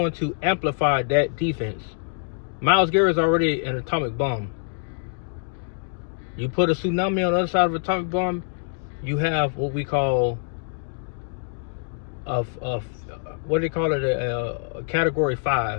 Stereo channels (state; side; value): silent; right; 62 dB below the other